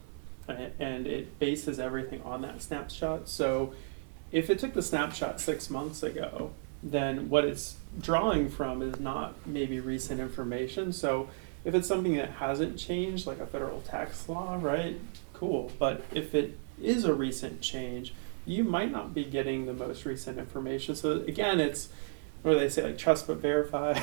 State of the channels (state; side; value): silent; left; 56 dB below the other